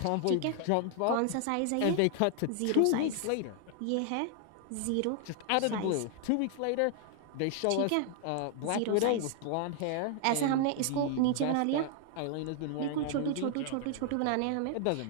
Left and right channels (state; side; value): different; both; correlation 0.00